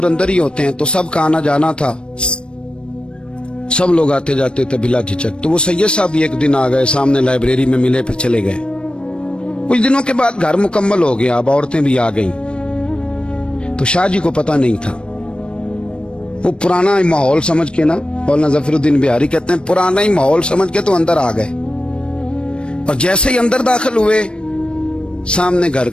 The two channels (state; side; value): late; right; 0.056 ms